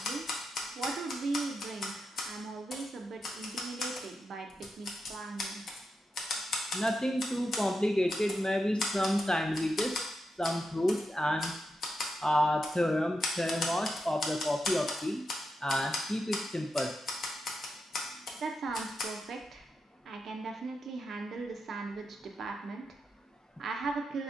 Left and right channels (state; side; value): normal; both; correlation 0.87